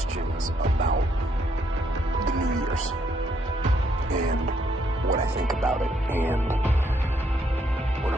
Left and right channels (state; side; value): normal; both; correlation 0.73